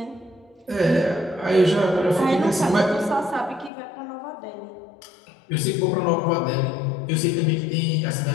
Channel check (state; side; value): drops out; right; at 3.7 s